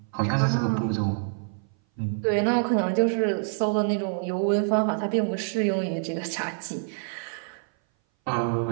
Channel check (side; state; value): left; silent; 58 dB below the other